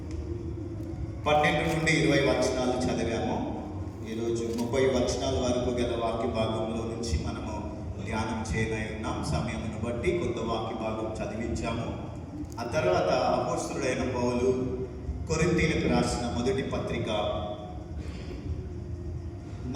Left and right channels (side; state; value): both; identical; correlation 1.00